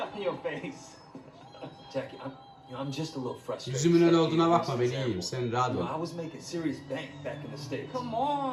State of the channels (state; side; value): identical; both; correlation 1.00